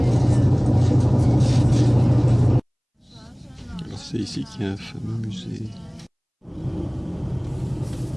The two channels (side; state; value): both; identical; correlation 1.00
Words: Alors c'est ici qu'il y a un fameux musée.